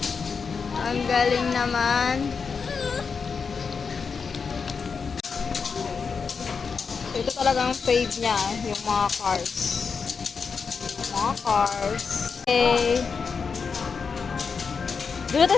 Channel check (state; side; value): quieter; right; 5.5 dB